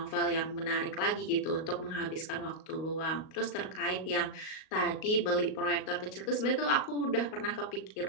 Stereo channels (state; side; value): late; right; 38 ms